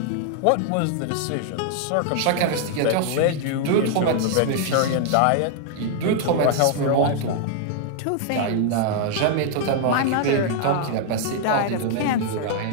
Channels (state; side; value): different; both; correlation 0.00